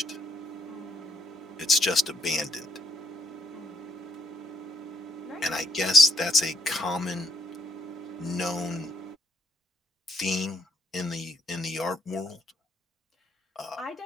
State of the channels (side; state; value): both; normal; correlation 0.72